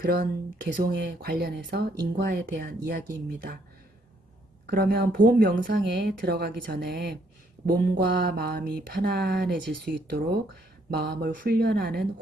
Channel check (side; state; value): both; normal; correlation 0.70